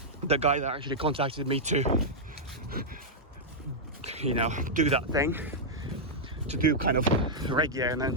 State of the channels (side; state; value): both; normal; correlation -0.07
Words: the guy that actually contacted me to do that thing, to do kind of reg gear and